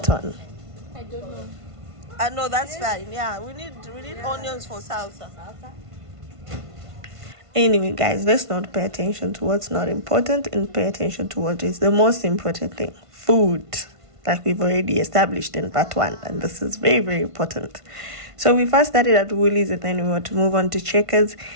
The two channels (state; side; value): late; left; 1.5 ms